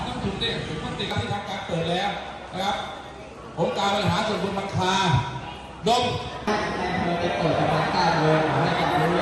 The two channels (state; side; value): identical; both; correlation 1.00